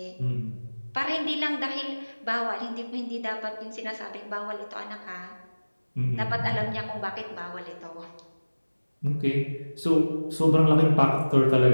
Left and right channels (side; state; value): both; inverted; correlation -1.00